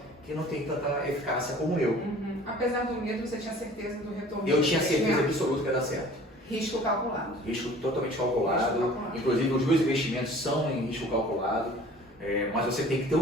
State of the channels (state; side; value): normal; both; correlation 0.48